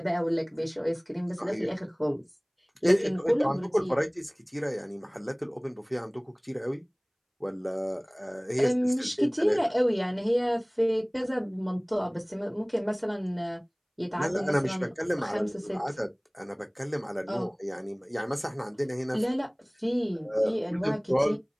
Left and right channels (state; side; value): identical; both; correlation 1.00